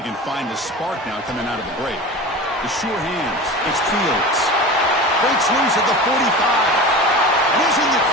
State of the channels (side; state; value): both; normal; correlation 0.32